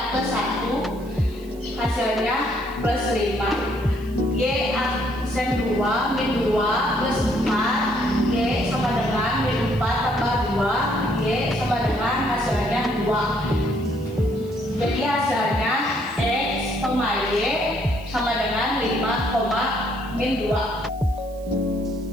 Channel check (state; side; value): noise; right; hiss, 25 dB below the sound